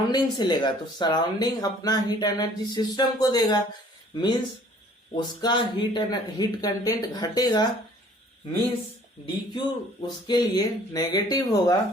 से लेगा, तो सराउंडिंग अपना हीट एनर्जी सिस्टम को देगा, मींस उसका हीट कंटेंट घटेगा, मींस डीक्यू उसके लिए नेगेटिव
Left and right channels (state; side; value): normal; both; correlation 0.55